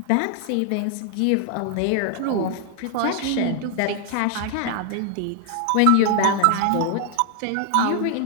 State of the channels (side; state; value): both; different; correlation 0.00